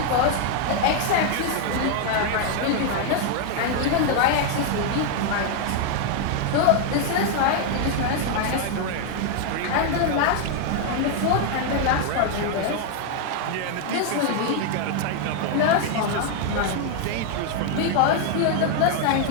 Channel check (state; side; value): different; both; correlation 0.00